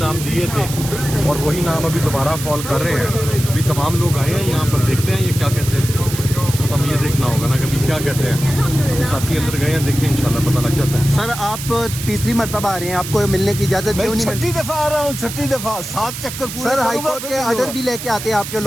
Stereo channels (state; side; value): noise; right; hiss, 9 dB below the sound